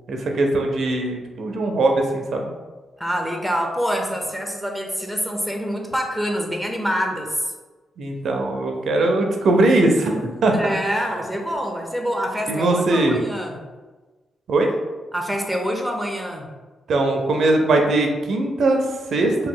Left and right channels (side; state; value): both; normal; correlation 0.81